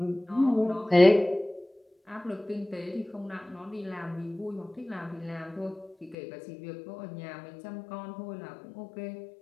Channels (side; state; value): right; drops out; at 6.2 s